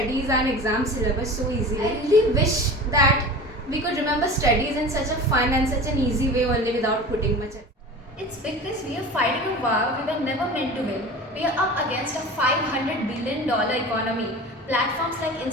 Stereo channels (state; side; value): normal; both; correlation 0.35